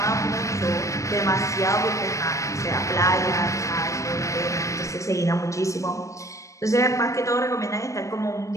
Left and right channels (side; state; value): right; late; 0.15 ms